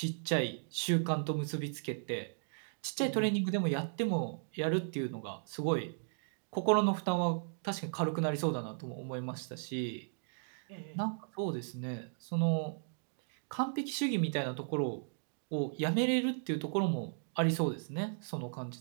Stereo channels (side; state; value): left; silent; digital silence